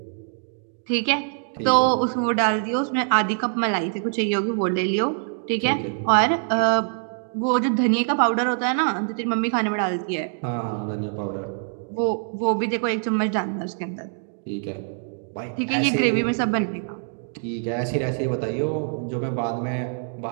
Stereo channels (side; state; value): left; silent; digital silence